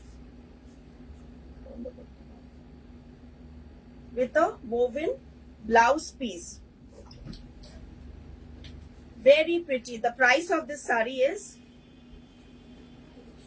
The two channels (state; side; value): identical; both; correlation 1.00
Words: With a woven blouse piece. Very pretty. The price of this sari is